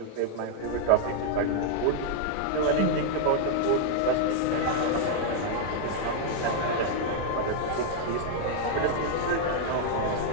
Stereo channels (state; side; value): different; both; correlation -0.01